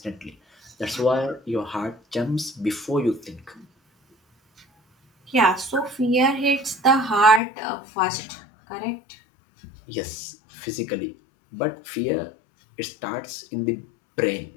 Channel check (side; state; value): right; drops out; at 7.4 s